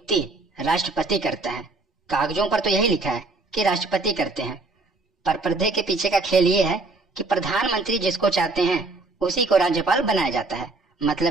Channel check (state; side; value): quieter; left; 3.3 dB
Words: राष्ट्रपति करता है। कागजों पर तो यही लिखा है कि राष्ट्रपति करते हैं। पर पर्दे के पीछे का खेल ये है कि प्रधानमंत्री जिसको चाहते हैं उसी को राज्यपाल बनाया जाता है।